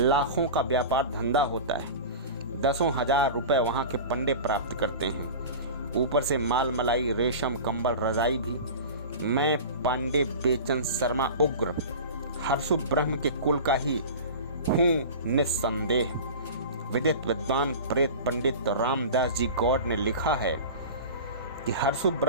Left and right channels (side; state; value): both; inverted; correlation -0.33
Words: का व्यापार धंधा होता है। 10,000 रुपए वहाँ के पंडे प्राप्त करते हैं। ऊपर से माल मलाई, रेशम, कंबल, रजाई भी। मैं पांडे बेचन शर्मा उग्र हर्षु ब्रह्म के कुल का ही हूँ निस्संदेह। विदित विद्वान प्रेत पंडित रामदास जी गौड़ ने लिखा है कि हर्षु